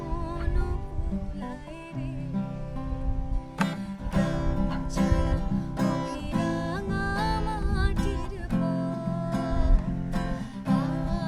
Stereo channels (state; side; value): identical; both; correlation 1.00